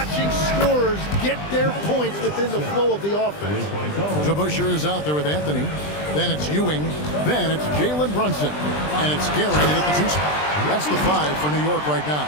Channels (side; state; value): right; late; 20 ms